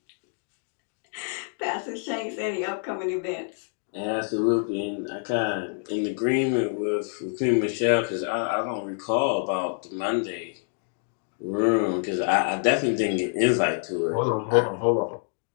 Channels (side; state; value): right; silent; 60 dB below the other